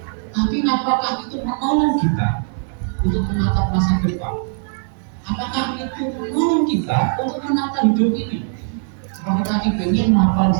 Tapi apakah itu menolong kita untuk menatap masa depan? Apakah itu menolong kita untuk menata hidup ini? Kalau kita ingin mapan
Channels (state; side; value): silent; left; 61 dB below the other